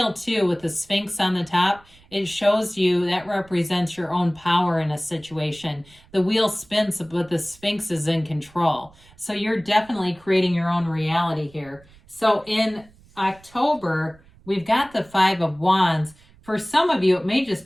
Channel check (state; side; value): noise; right; rumble, 27 dB below the sound